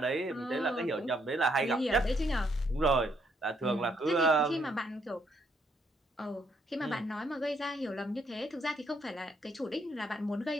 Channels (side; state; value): both; normal; correlation 0.72